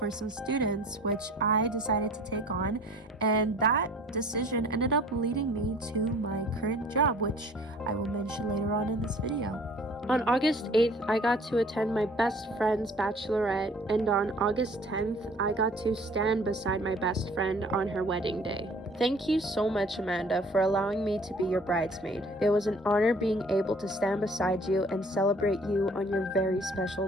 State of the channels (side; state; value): both; normal; correlation 0.51